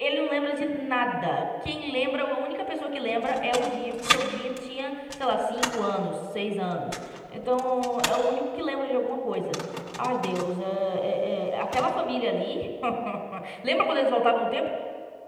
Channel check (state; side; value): identical; both; correlation 1.00